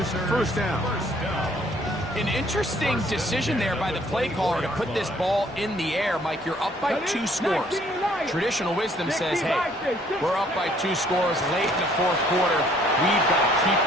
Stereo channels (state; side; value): normal; both; correlation 0.61